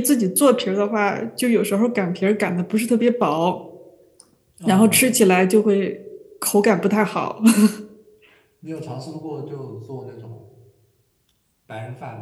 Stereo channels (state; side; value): identical; both; correlation 1.00